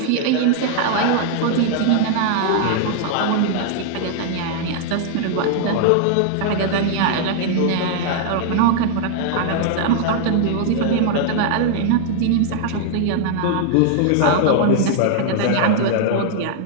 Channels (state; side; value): different; both; correlation -0.01